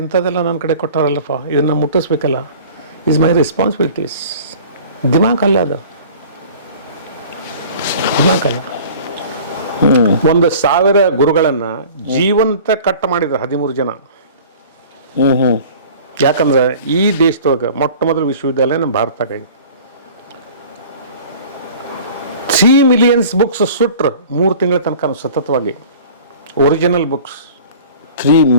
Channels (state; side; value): inverted; both; correlation -0.45